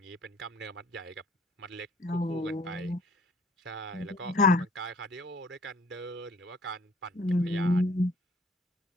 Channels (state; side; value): normal; both; correlation 0.56